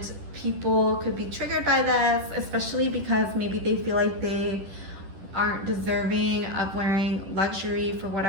people could be triggered by this, especially because maybe they feel like they aren't deserving of wearing luxury for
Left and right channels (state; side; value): late; left; 10 ms